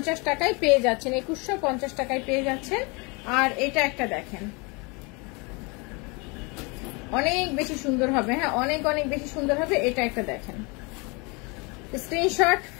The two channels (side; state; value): right; quieter; 29.7 dB